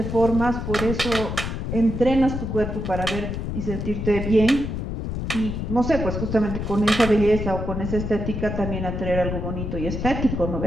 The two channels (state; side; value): noise; left; rumble, 4 dB below the sound